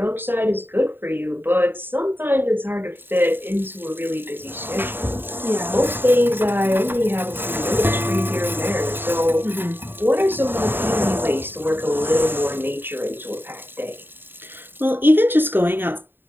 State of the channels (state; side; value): late; left; 0.098 ms